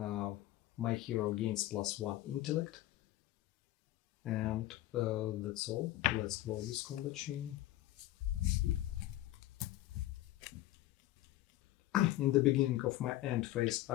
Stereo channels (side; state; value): right; quieter; 15.5 dB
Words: My hero gains +1 intellect. And that's all. Let's close this combat chain. In the beginning of my end phase,